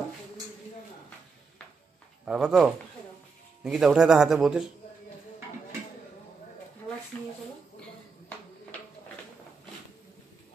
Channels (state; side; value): quieter; left; 4.9 dB